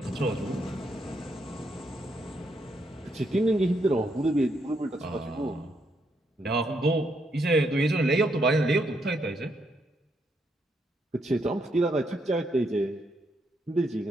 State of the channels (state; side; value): normal; both; correlation 0.77